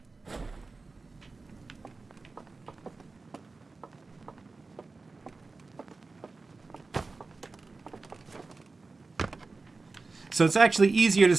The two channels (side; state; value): left; quieter; 3.8 dB